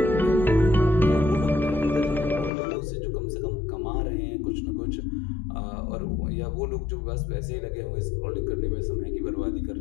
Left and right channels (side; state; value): right; drops out; at 2.5 s